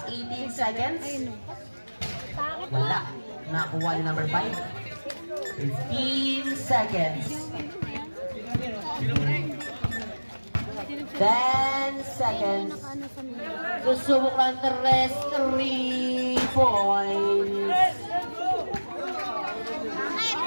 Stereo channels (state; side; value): inverted; both; correlation -1.00